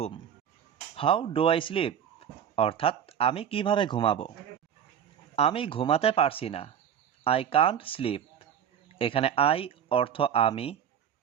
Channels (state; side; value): quieter; left; 8.9 dB